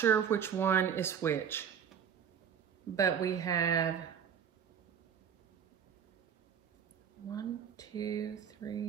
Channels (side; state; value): left; quieter; 7.9 dB